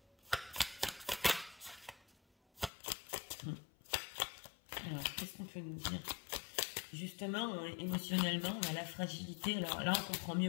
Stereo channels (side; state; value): right; drops out; at 2.7 s